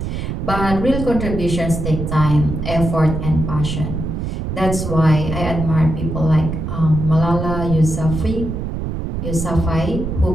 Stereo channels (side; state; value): right; noise; rumble, 4 dB below the sound